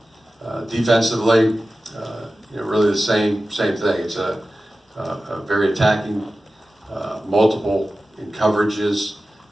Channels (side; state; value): both; normal; correlation 0.95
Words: defensively, really the same thing. It's a very attacking, multiple in coverages,